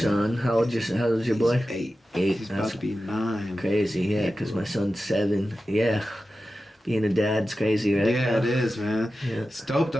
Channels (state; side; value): normal; both; correlation 0.93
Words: How old's your boy? He's 8. 8. He's about to be 9. Crazy, yeah, because my son's 7. Yeah. Being a dad's crazy, right? Yeah, it is, man. Yeah. It's dope,